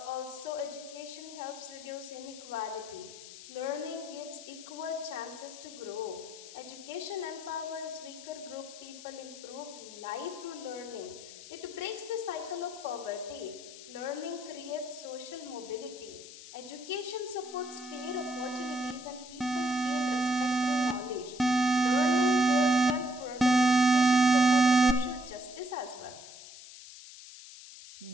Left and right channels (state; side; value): noise; left; hiss, 15 dB below the sound